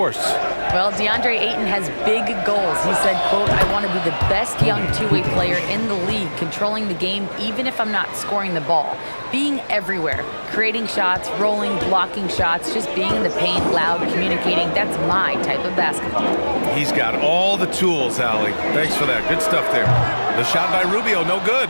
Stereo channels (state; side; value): inverted; both; correlation -1.00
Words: Well, DeAndre Ayton has big goals. He said, quote, "I want to be the best young two-way player in the league, controlling the game even if I'm not scoring the ball. Being everywhere, creating shots, rolling, blocking shots, just being in the paint, loud, communicating. That's my type of basketball." He's got all the tools, Allie. Thanks for that. Good stuff there. The shot by Rubio, no good.